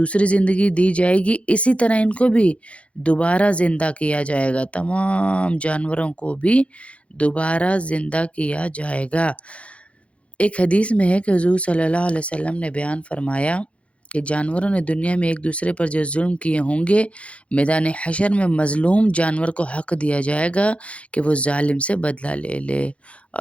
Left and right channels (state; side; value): late; right; 0.062 ms